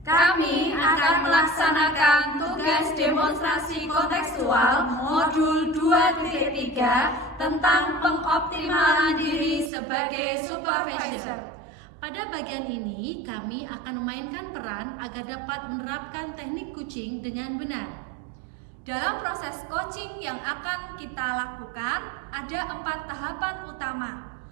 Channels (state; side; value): drops out; left; at 9.7 s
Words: akan melaksanakan tugas demonstrasi kontekstual modul 2.3 tentang pengoptimalan diri sebagai supervisor. Pada bagian ini, kami akan memainkan peran agar dapat menerapkan teknik coaching dengan benar. Dalam proses coaching yang akan kita lakukan, ada 4 tahapan utama,